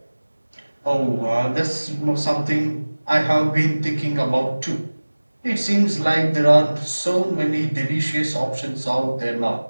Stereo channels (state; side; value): inverted; both; correlation -1.00